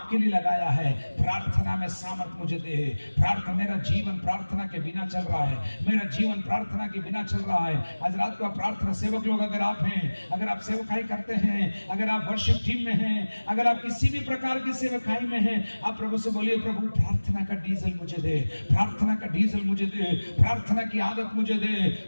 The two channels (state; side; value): inverted; both; correlation -1.00